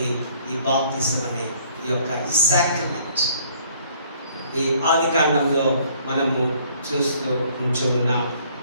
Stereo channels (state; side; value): inverted; both; correlation -0.60